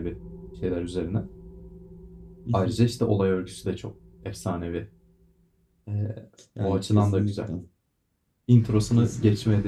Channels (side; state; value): both; identical; correlation 1.00